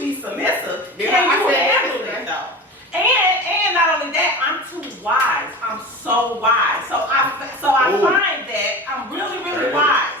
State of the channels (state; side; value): normal; both; correlation 0.31